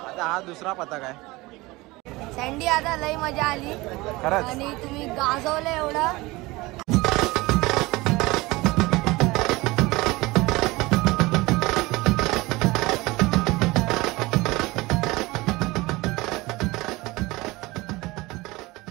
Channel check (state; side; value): quieter; left; 21.4 dB